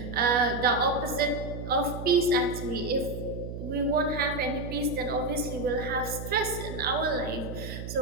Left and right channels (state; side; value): noise; right; hum, 8 dB below the sound